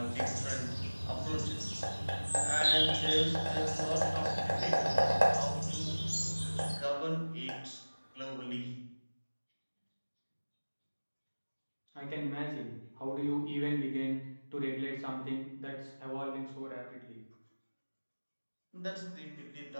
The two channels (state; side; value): inverted; both; correlation -1.00